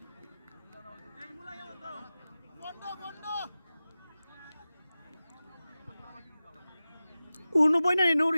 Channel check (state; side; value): inverted; both; correlation -0.95